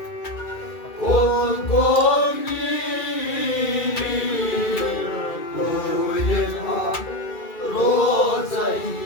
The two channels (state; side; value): late; right; 2.3 ms